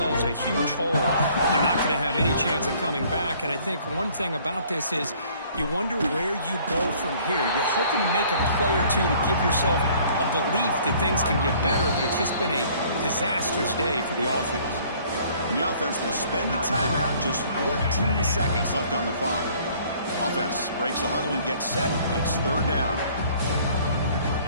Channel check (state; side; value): inverted; both; correlation -0.57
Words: a huge hole. They're not going to have any chance of coming back. And I think one thing about this is you wonder where you go from here. You're hoping to make a play or two to give yourself a belief that things can get better, but it's just been a disastrous day for the offense. And the offense will spend a timeout, just 14 seconds left on the clock. Offense breaks the huddle and gets set. It's 3rd down.